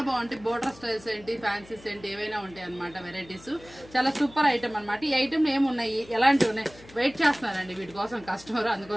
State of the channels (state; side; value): noise; left; hum, 22 dB below the sound